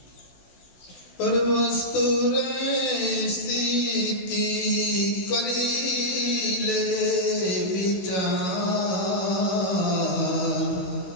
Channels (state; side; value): late; right; 16 ms